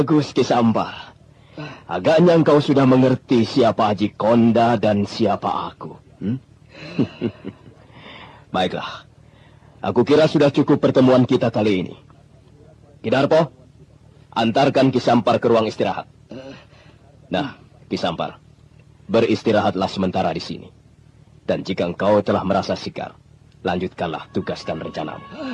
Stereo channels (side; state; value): both; identical; correlation 1.00